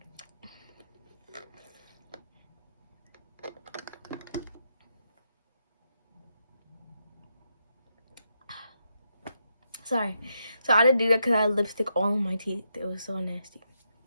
Sorry. So I had to do that because I had lipstick all on my teeth. It was so nasty.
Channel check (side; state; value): both; inverted; correlation -0.82